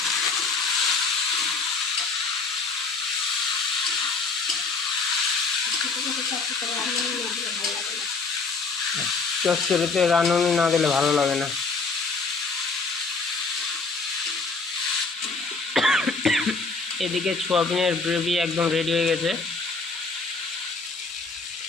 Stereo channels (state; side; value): quieter; right; 4.1 dB